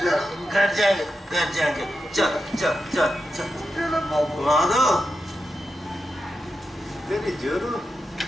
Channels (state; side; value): normal; both; correlation 0.88